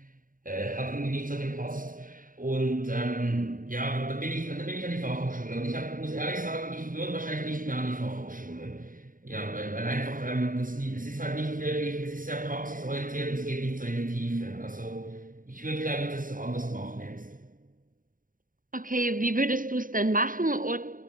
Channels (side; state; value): left; late; 0.40 ms